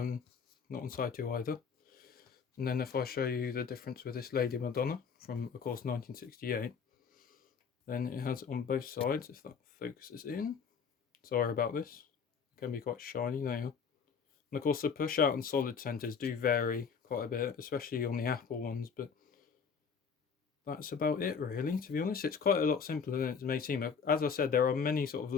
on side 2 either. And then if I show you the difference with this Lady Madonna from, of course, 1968, then it has on both sides, if that focuses in. Sorry about this. It can be quite shiny now. And of course, the push out and solid centers do vary quite a bit, especially on the Apple ones, but that's about it really, to be honest. It's quite a lot simpler than it may seem. As I said, there are many sort of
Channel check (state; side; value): quieter; right; 6.2 dB